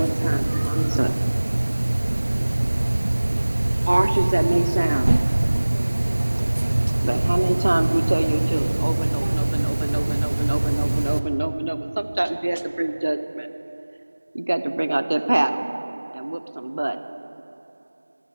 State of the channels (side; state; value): both; inverted; correlation -1.00